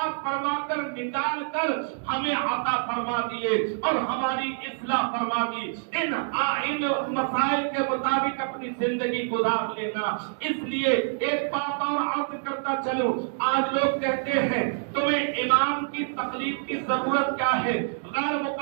فرما کر نکال کر ہمیں عطا فرما دیے اور ہماری اصلاح فرما دی. ان مسائل کے مطابق اپنی زندگی گزار لینا. اس لیے ایک بات اور عرض کرتا چلوں. آج لوگ کہتے ہیں تمہیں امام کی تقلید کی ضرورت کیا ہے؟ غیر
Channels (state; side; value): silent; left; 60 dB below the other